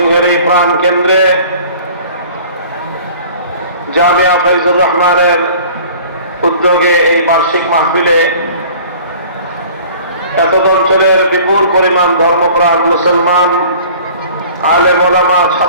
এই প্রাণ কেন্দ্রে জামিয়া ফয়জুর রহমানের উদ্যোগে এই বার্ষিক মাহফিলে এতদ অঞ্চলের বিপুল পরিমাণ ধর্মপ্রাণ মুসলমান, আলেম ওলামা,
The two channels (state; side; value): inverted; both; correlation -0.47